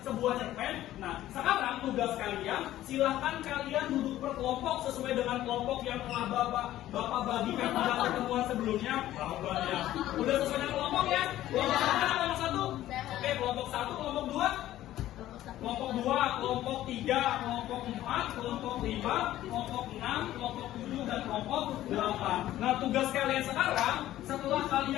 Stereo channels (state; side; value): quieter; right; 13.9 dB